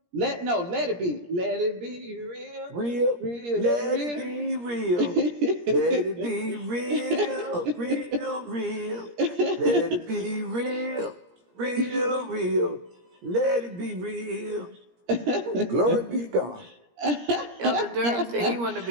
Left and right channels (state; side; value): late; left; 17 ms